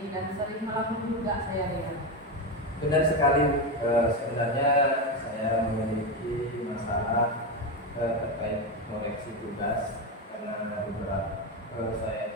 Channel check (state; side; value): normal; both; correlation 0.13